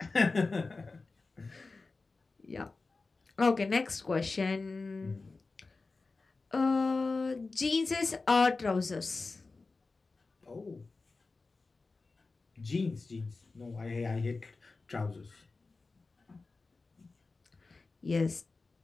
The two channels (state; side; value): quieter; right; 3.8 dB